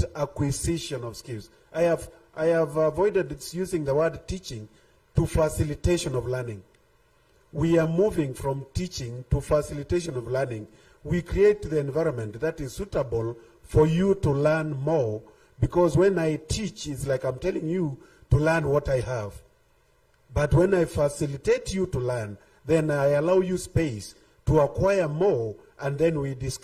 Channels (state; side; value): identical; both; correlation 1.00